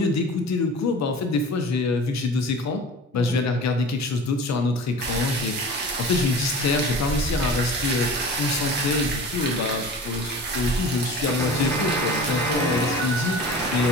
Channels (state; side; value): normal; both; correlation 0.38